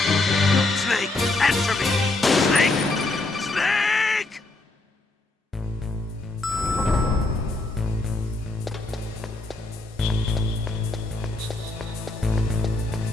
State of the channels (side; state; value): right; quieter; 3.1 dB